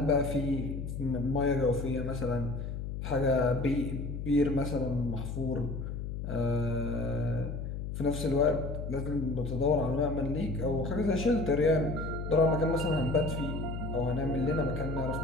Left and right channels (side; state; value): left; noise; hum, 5 dB below the sound